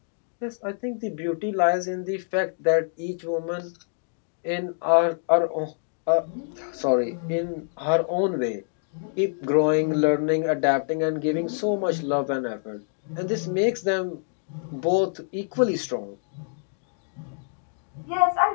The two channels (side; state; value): right; silent; digital silence